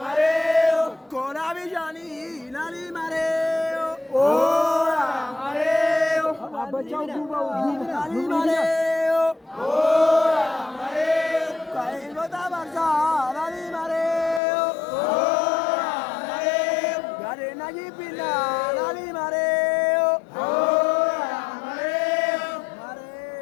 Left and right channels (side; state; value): right; drops out; at 14.4 s